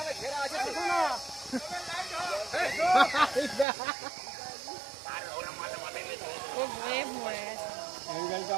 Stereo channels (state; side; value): drops out; left; at 3.7 s